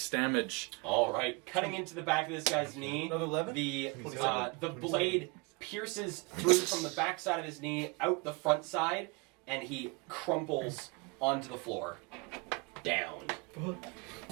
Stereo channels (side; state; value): left; quieter; 29.2 dB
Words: damage. All right, cutting into the back of this guy's knee. Another 11? The blade pierces through from the back side of his knee out the front side, and he crumples onto the floor, down.